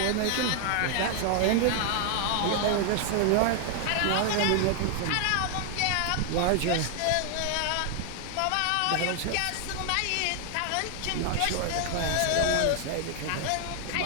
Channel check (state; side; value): different; both; correlation 0.00